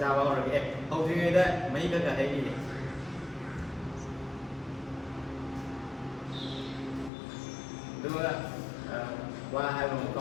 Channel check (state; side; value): drops out; right; at 7.1 s